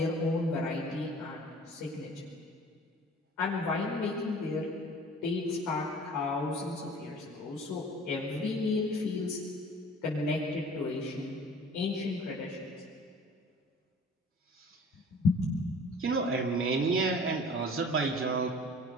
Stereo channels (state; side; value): normal; both; correlation 0.47